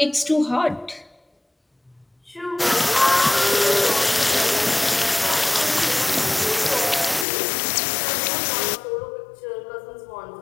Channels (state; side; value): drops out; right; at 7.2 s